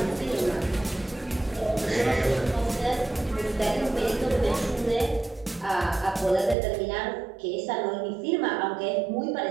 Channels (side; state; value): left; drops out; at 6.6 s